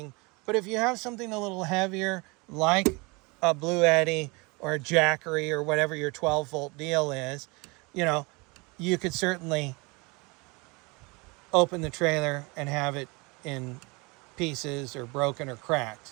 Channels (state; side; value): quieter; left; 27.2 dB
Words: But if you have something a little heavier, like a Blue Eddy or a Jackery or whatever your 12-volt deal is, you know, you could certainly open the trailer and have it in pieces or broken or cracked.